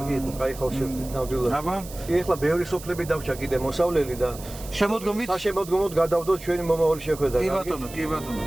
იყო, კაი ხალხშევდით ნამდვილად. აბა, ეხლა ბევრი სოფლები დავრჩა კიდე მოსავლელი და შემოდგომით საშემოდგომოდ გადავდოთ ჩვენი მომავალი შეხვედრა. კი ბატონო, კი ბატონო,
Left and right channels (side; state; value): right; noise; hiss, 16 dB below the sound